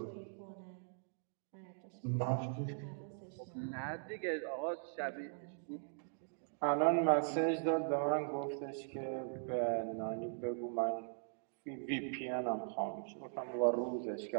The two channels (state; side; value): silent; left; digital silence